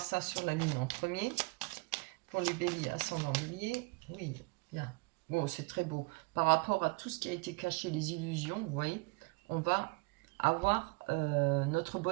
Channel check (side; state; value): left; quieter; 28.2 dB